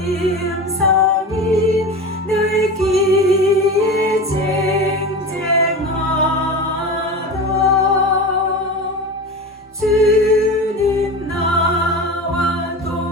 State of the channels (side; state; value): both; normal; correlation 0.29